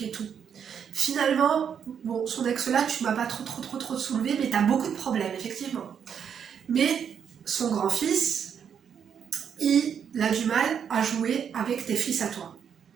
et tout. Finalement, bon, son ex-là, tu m'as pas trop soulevé, mais t'as beaucoup de problèmes, effectivement. Mais son grand-fils, il a du mal à jouer avec tes fils à toi.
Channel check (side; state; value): left; quieter; 7.8 dB